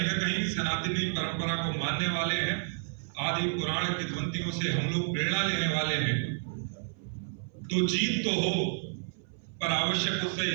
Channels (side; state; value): left; silent; 58 dB below the other